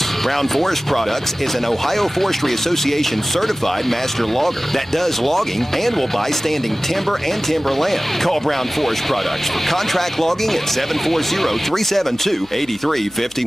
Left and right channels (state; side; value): noise; left; hum, 28 dB below the sound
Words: Brown Forest Products is an Ohio Forestry Association certified master logger that does logging and will buy standing timber and timberland. Call Brown Forest Products for contract logging at 740-372-8351.